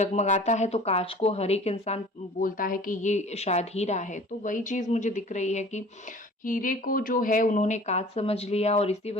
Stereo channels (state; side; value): normal; both; correlation 0.46